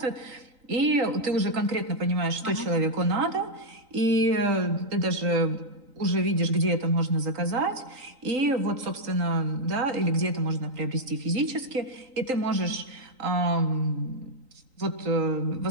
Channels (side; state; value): left; late; 3.9 ms